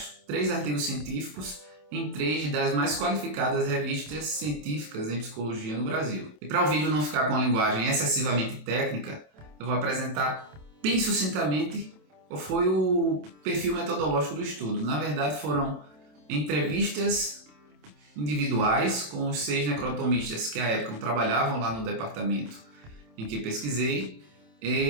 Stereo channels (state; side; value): late; left; 27 ms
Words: 3 artigos científicos em 3 das mais qualificadas revistas científicas em psicologia no Brasil. E para o vídeo não ficar com a linguagem excessivamente técnica, eu vou apresentar bem sucintamente qual foi o perfil metodológico do estudo. Na verdade, foram entrevistas individuais com os 6 necrotomistas que à época trabalhavam lá no departamento em que pesquisei,